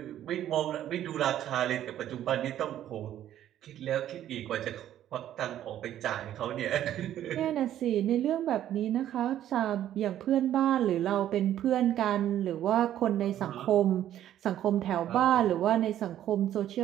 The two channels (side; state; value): left; quieter; 11.7 dB